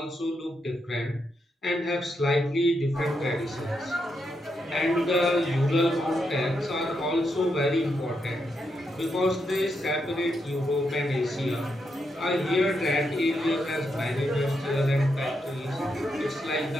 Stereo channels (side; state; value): both; normal; correlation 0.82